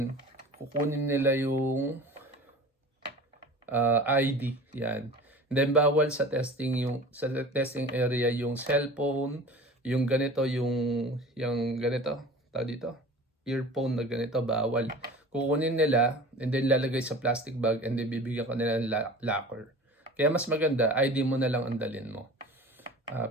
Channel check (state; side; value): normal; both; correlation 0.39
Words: kukunin nila yung ID, yan. And then bawal sa testing area yung cellphone, yung ganito, yung ganito, tawag dito, earphone na ganito, bawal. Kukunin nila, and then lalagay sa plastic bag, and then bibigyan ka nila ng locker. Kaya mas maganda, ID mo na lang ang dalhin mo.